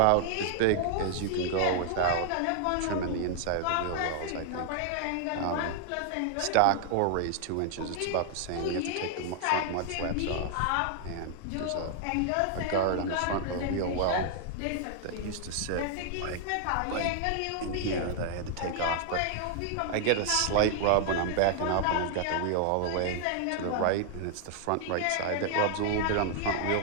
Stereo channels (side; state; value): both; different; correlation 0.00